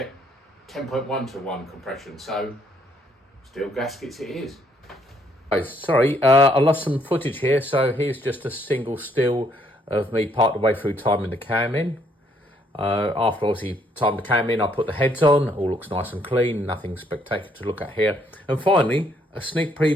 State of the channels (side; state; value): both; normal; correlation 0.69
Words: 10.1 to 1 compression. So steel gaskets it is. Sorry, I lost some footage here, so here's just a single still of me part the way through timing the cam in. After obviously time the cam in, I put the heads on, all looks nice and clean, nothing spectacular to look at here. And finally, a sneak